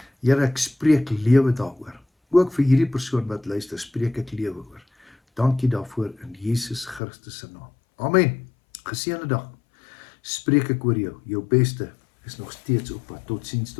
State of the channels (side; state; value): right; drops out; at 7.0 s